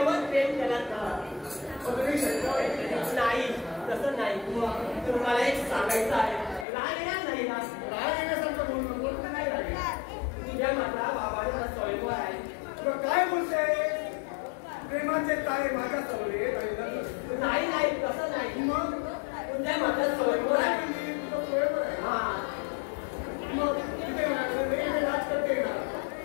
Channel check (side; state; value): right; drops out; at 6.7 s